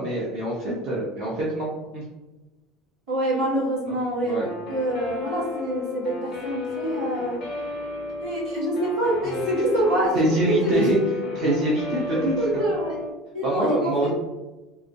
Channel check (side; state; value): both; normal; correlation 0.38